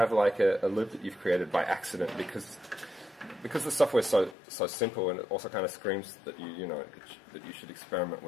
like a loop that you've created by accident, because the software is so simple, and it also kind of screams that that you should experiment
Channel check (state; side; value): drops out; right; at 4.4 s